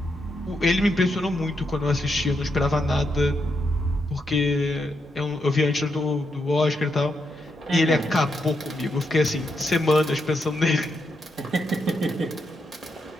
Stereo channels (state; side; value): normal; both; correlation 0.82